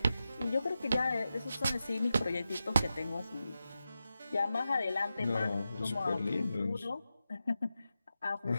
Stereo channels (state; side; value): inverted; both; correlation -0.91